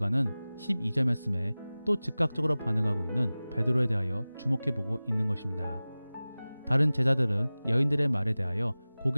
12절 말씀에 또 즉각적으로 반응하고 있는 베드로에 대하여 주목해 보고 있는 것입니다. 다른 제자들은 여인들의 말에 대하여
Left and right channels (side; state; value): both; inverted; correlation -0.98